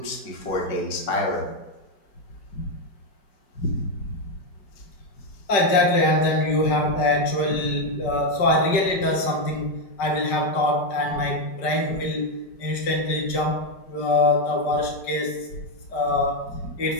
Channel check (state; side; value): late; right; 5.1 ms